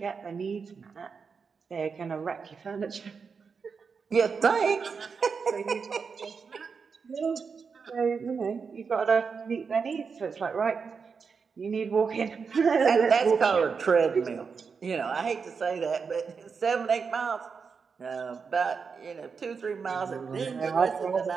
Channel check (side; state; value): left; quieter; 5.6 dB